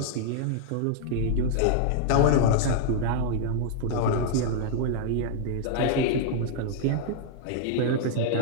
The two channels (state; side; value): different; both; correlation -0.01